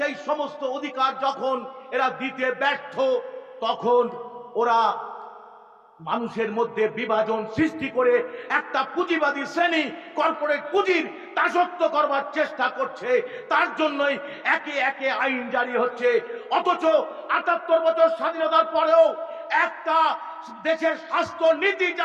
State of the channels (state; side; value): identical; both; correlation 1.00